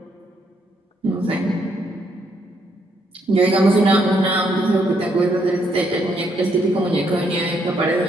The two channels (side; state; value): both; normal; correlation 0.73